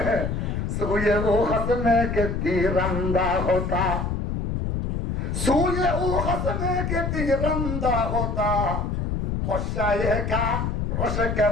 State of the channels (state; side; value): noise; left; rumble, 1 dB below the sound